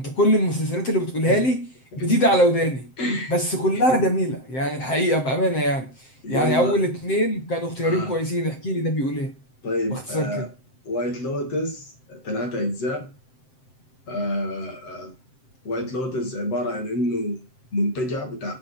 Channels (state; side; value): late; right; 7.7 ms